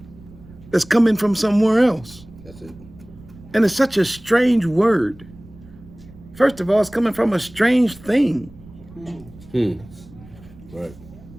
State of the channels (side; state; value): right; noise; rumble, 21 dB below the sound